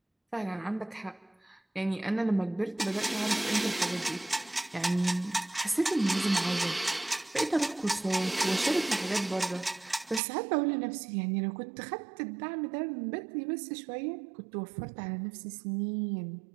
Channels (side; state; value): left; drops out; at 10.2 s